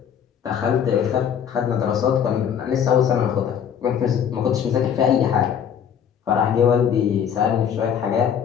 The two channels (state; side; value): quieter; right; 8.4 dB